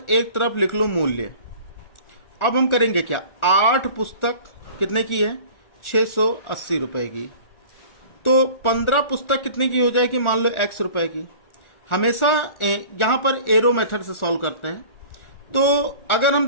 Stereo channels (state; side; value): late; right; 1.4 ms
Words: एक तरफ लिख लो मूल्य। अब हम करेंगे क्या, 8 पुस्तक कितने की है, 680 रुपए की, तो 15 पुस्तक कितने की हो जाएगी, मान लो x रुपए की। हमेशा यहां पर एरो मेथड से सॉल्व करते हैं। तो अगर हम